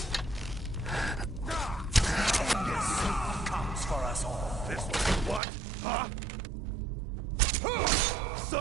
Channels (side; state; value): left; drops out; at 5.4 s